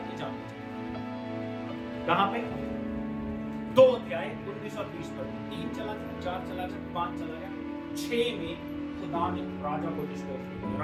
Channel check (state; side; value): identical; both; correlation 1.00